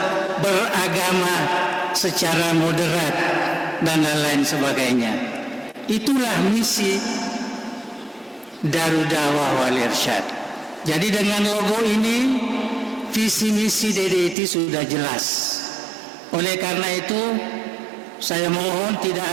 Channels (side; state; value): left; drops out; at 14.4 s